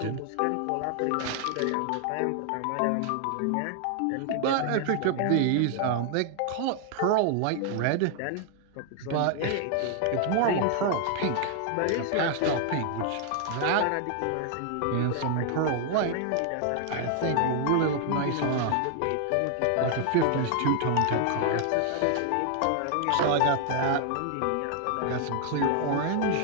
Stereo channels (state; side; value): different; both; correlation 0.00